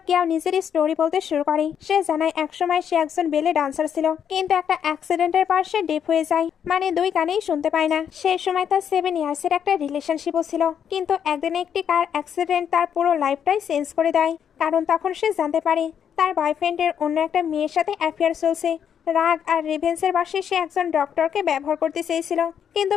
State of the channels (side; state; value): right; quieter; 8.4 dB